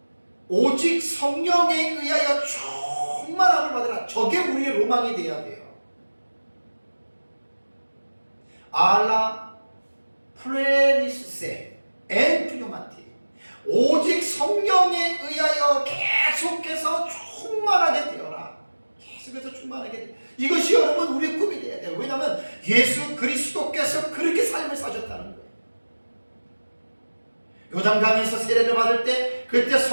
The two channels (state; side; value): inverted; both; correlation -1.00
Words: 오직 성령에 의하여 충만함을 받으라. 저게 우리의 로망이 돼야 돼요. 알라 프레리스세 엔 프뉴마티. 오직 성령에 의하여 계속해서 충만하게 되어라. 계속해서 충만하게 되어라. 이것이 여러분 우리의 꿈이 돼야 돼요. 왜냐하면 예수 그리스도께서 그렇게 삶을 사셨다는 거예요. 요단강에서 세례를 받을 때 그때